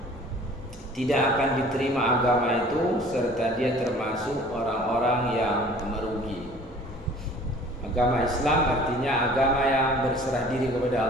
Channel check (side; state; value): both; normal; correlation 0.49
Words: tidak akan diterima agama itu, serta dia termasuk orang-orang yang merugi. Agama Islam artinya agama yang berserah diri kepada